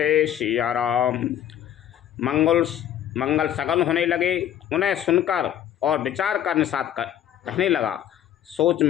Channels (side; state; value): right; quieter; 10.7 dB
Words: सिया राम। मंगल सगन होने लगे। उन्हें सुनकर और विचार कर निषाद कहने लगा, सोच